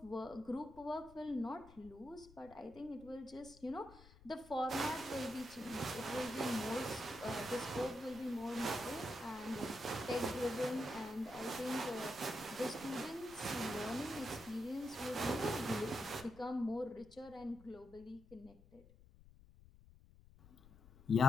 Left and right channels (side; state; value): left; noise; rumble, 21 dB below the sound